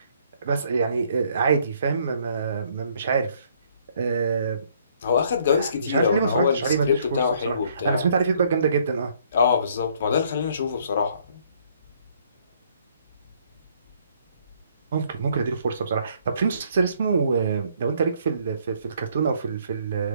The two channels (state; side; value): inverted; both; correlation -0.64